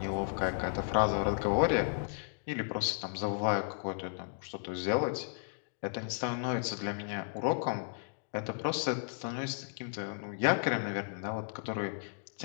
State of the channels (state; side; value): silent; right; digital silence